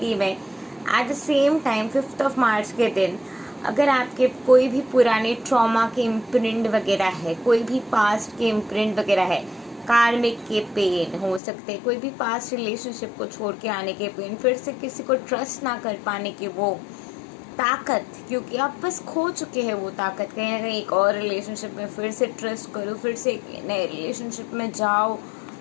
में। एट द सेम टाइम 5 मार्च के दिन अगर आपके कोई भी पुराने ट्रॉमा के इम्प्रिंट वगैरह है, कोई भी पास्ट के इम्प्रिंट वगैरह है, कार्मिक के पेन हो सकते हैं, कोई भी पास्ट रिलेशनशिप को छोड़ के आने के पेन, फिर से किसी को ट्रस्ट ना कर पाने की वो ताकत, क्योंकि आप बस खो चुके हैं वो ताकत, कहीं ना कहीं एक और रिलेशनशिप में फिर से ट्रस्ट करो, फिर से एक नए रिलेशनशिप में जाओ,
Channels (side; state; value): right; drops out; at 11.4 s